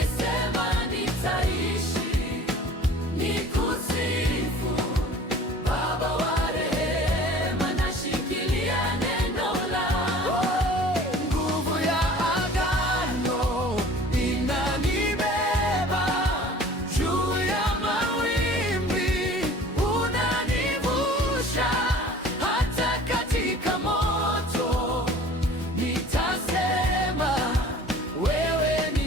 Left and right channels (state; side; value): normal; both; correlation 0.46